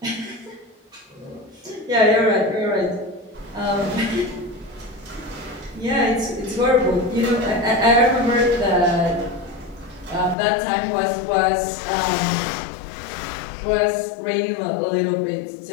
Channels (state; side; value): drops out; right; at 10.4 s